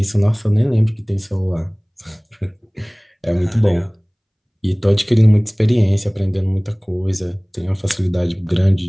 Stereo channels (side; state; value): both; identical; correlation 1.00